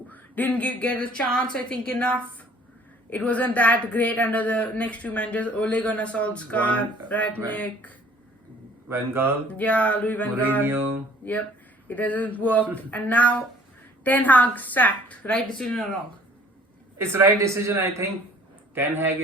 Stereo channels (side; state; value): both; normal; correlation 0.54